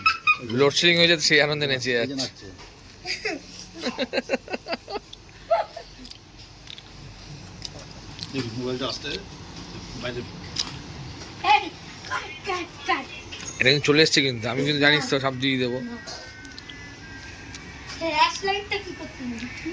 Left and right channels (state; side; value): identical; both; correlation 1.00